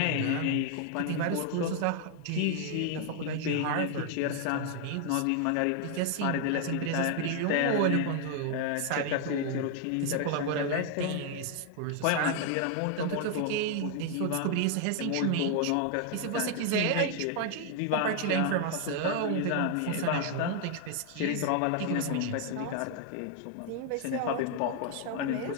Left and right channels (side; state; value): both; different; correlation 0.00